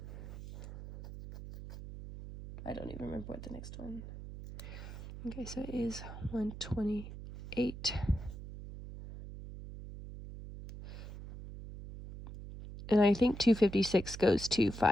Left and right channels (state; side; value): noise; right; hum, 11 dB below the sound